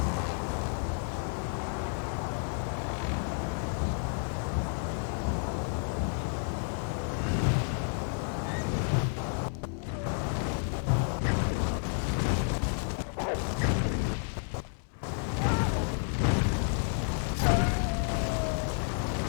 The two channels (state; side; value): silent; right; 55 dB below the other